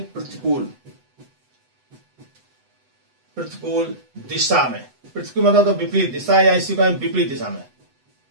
प्रतिकूल दिशा में, प्रतिकूल मतलब तो विपरीत दिशा या इसी को विपरीत दिशा में,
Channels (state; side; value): late; left; 8.0 ms